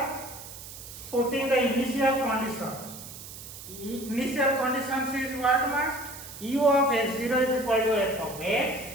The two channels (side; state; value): right; noise; hiss, 13 dB below the sound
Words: putting the initial conditions. Initial conditions is what much? U of x0 is equal to f of